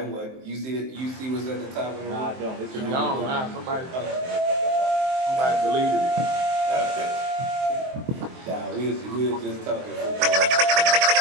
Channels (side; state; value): left; late; 23 ms